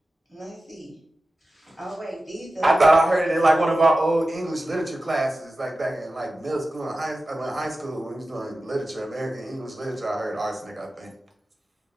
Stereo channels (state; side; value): normal; both; correlation 0.94